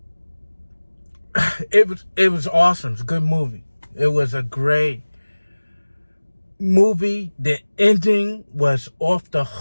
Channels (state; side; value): inverted; both; correlation -1.00